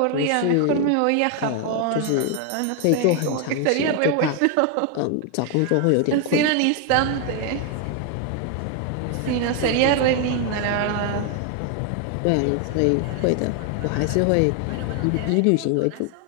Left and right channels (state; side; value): different; both; correlation 0.00